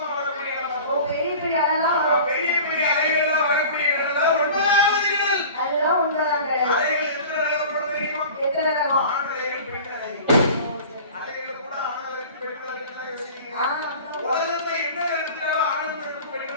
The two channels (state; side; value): inverted; both; correlation -0.40